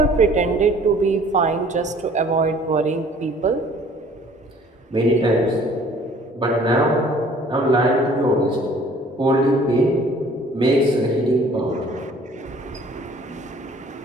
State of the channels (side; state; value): both; normal; correlation 0.54